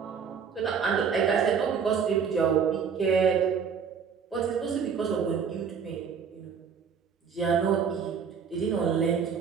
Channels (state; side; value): quieter; left; 6.6 dB